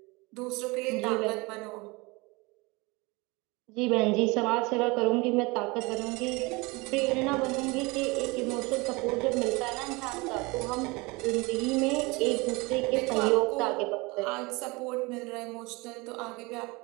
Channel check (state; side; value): quieter; left; 25.2 dB